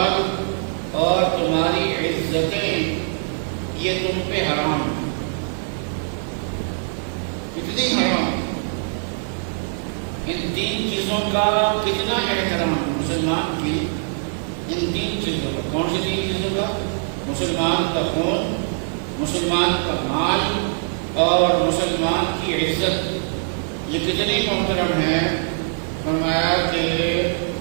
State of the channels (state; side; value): silent; left; digital silence